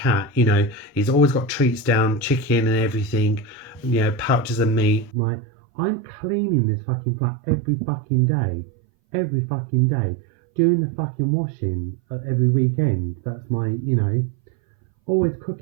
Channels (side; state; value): left; drops out; at 5.1 s